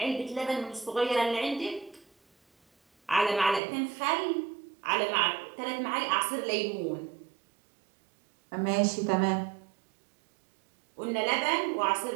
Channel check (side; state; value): left; drops out; at 3.6 s